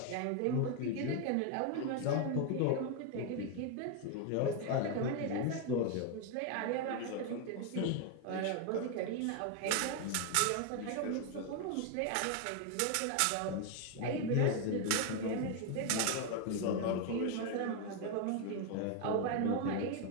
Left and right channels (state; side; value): different; both; correlation 0.01